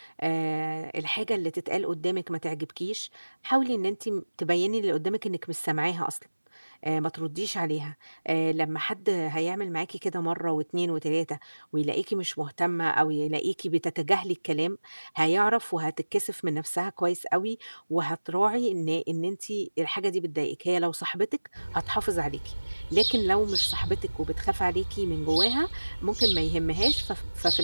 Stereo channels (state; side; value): inverted; both; correlation -1.00